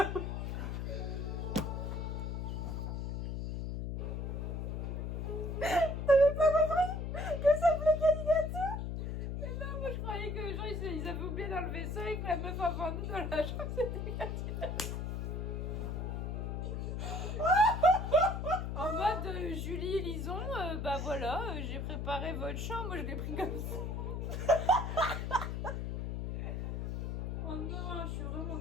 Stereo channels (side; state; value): left; noise; hum, 3 dB below the sound